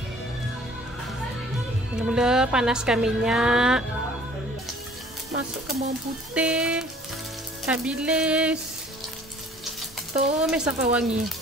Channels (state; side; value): normal; both; correlation 0.53